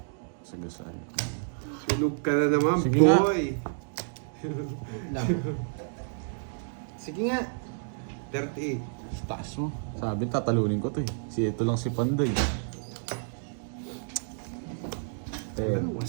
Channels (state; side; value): silent; left; digital silence